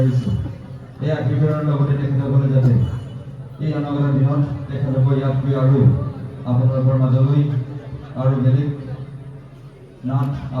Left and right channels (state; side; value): identical; both; correlation 1.00